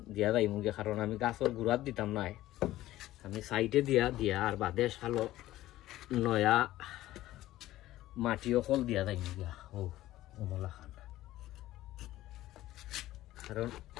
দিয়া যাই মুগে, কারণ আমি গাছর গুড়াত দিতাম নাই, আমি সাইডে দিয়া আর বাদে সালো নয়া মাটিও কল দিয়া যাই মুগিয়া ও মোলা খান। কারণ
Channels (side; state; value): right; quieter; 15.3 dB